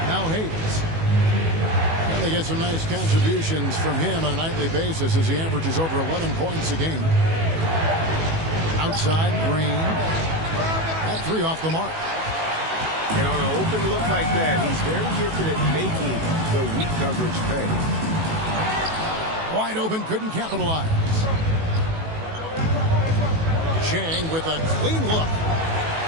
Now Hayes. And they get some nice contributions from him on a nightly basis as he averages over 11 points a game. Outside Green. That 3 off the mark. And on an open look like that, he's very gifted at making the weak coverage pay. Wide open, couldn't capitalize. Chang with a clean look.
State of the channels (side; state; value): left; late; 18 ms